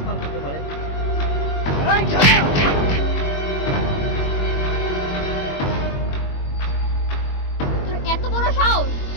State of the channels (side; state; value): right; late; 21 ms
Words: করতে পারে। তোর এত বড় সাহস,